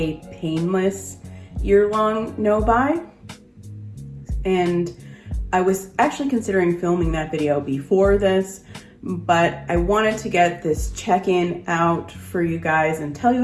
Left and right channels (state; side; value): identical; both; correlation 1.00